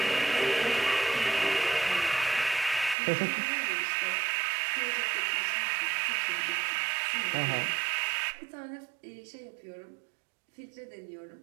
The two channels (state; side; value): drops out; left; at 3.0 s